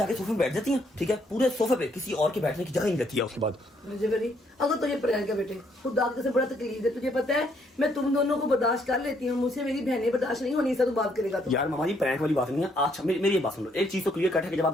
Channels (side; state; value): both; normal; correlation 0.70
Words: सोफे पे बैठ जाती है, ठीक है, पूरे सोफे पे, किसी और के बैठने की जगह नहीं रहती है उसके बाद। अजय भाई अगर तुझे प्रैंक है बेटे, खुदा से बड़ा तकलीफ है, तुझे पता है मैं तुम दोनों को बर्दाश्त कर लेती हूँ, मुझसे मेरी बहनें बर्दाश्त नहीं होनी, इससे तू बात करेगा तो। यार मामा जी प्रैंक वाली बात नहीं है। अच्छा मेरी बात सुन लो, एक चीज तो क्लियर कट है कि जब आप